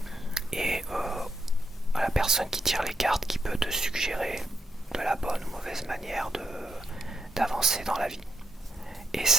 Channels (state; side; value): normal; both; correlation 0.80